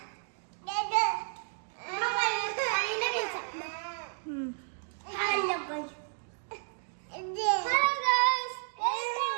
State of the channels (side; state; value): left; silent; digital silence